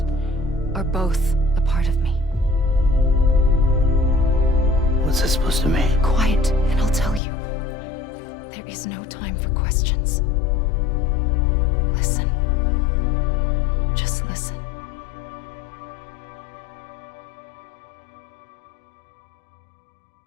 are both a part of me. What's this supposed to mean? Quiet, and I'll tell you. There is no time for questions. Listen. Just listen.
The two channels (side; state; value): right; drops out; at 7.2 s